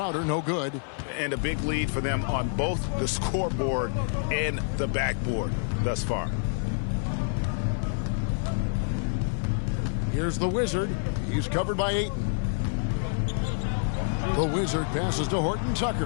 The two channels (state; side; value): silent; right; 57 dB below the other